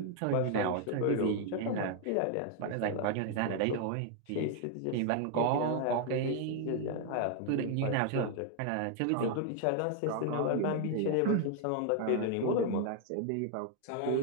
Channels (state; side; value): different; both; correlation 0.00